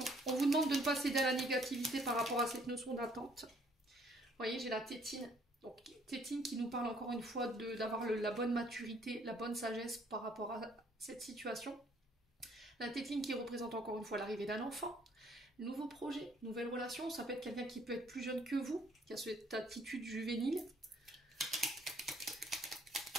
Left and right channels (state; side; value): normal; both; correlation 0.63